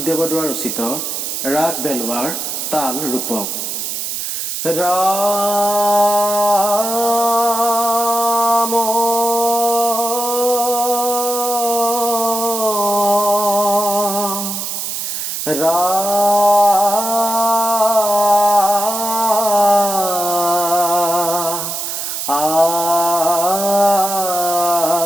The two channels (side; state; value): right; noise; hiss, 4 dB below the sound